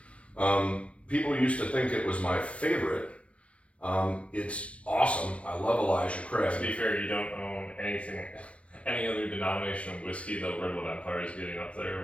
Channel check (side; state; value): right; late; 0.062 ms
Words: People used to think it was my favorite. It's awesome. I love Elijah Craig. To be fair, you don't own any other denomination of whiskey, though Redwood Empire is getting up